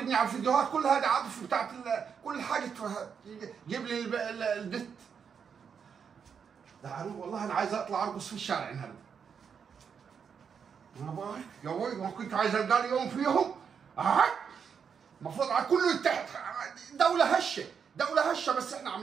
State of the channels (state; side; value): quieter; left; 6.8 dB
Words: على الفيديوهات كلها يا عاطف بتاعت كل حاجه. جيب لي البت. والله انا عايز اطلع ارقص في الشارع النهارده. يا بوي ما كنت عايز القى لي يوم فيهم. المفروض على كله يتحد. دولة هشة بس احنا